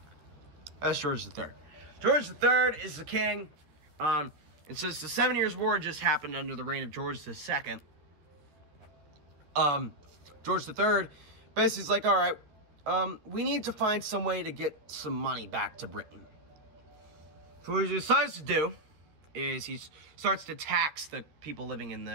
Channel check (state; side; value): late; left; 13 ms